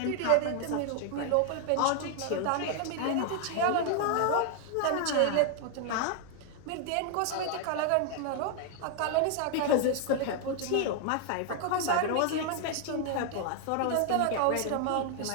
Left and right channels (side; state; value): both; different; correlation 0.00